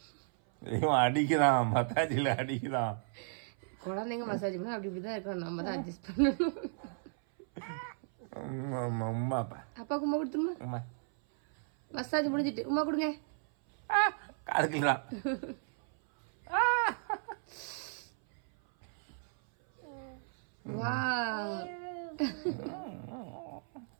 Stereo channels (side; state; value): left; silent; 55 dB below the other